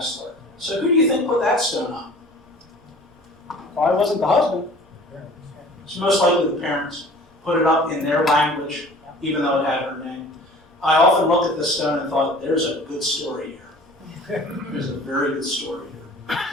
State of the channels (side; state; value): both; normal; correlation 0.46